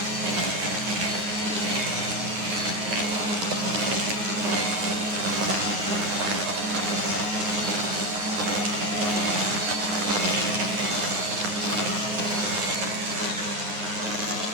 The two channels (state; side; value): late; left; 9.6 ms